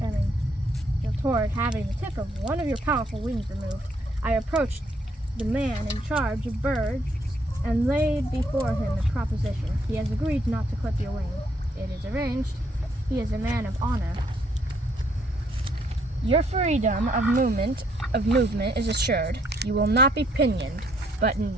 toward having the tip of one of your powerful wings removed, I approached the man in charge of birds and laid before him a proposition. He has agreed not to clip your wing. It is arranged. He is a man of honor. Your freedom of movement is assured. You will not be pinioned, but in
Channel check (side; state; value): both; normal; correlation 0.69